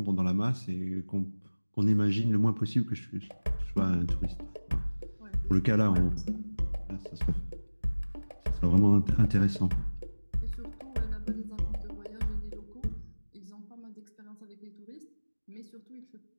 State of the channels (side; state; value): both; inverted; correlation -1.00